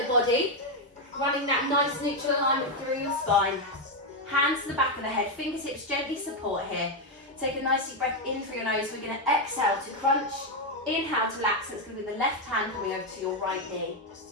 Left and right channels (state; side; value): normal; both; correlation 0.04